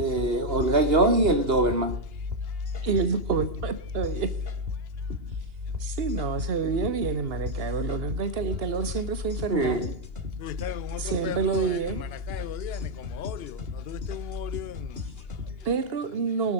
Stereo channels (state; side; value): late; left; 2.8 ms